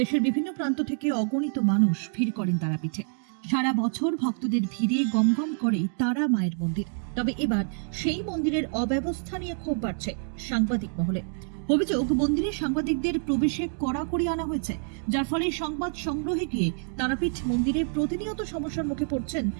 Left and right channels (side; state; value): left; silent; 55 dB below the other